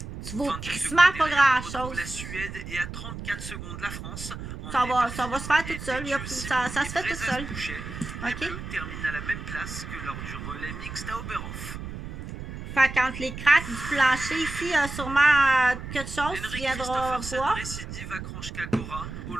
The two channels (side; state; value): right; noise; rumble, 9 dB below the sound